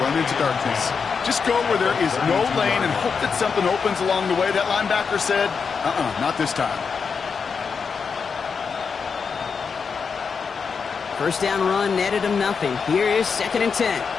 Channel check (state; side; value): quieter; right; 5.7 dB